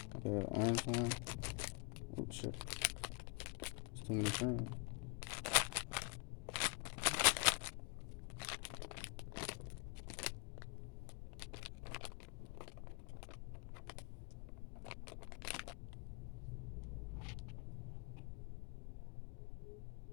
Okay, the orange one. Oh shit. It's too many cream.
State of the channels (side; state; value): right; quieter; 31.3 dB